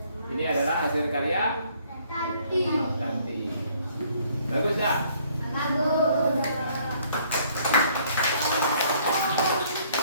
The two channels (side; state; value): both; inverted; correlation -0.63